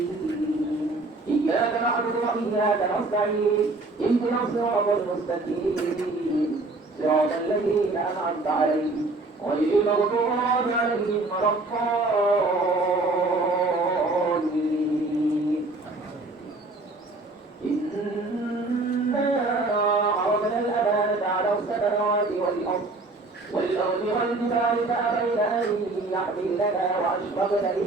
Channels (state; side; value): quieter; left; 3.2 dB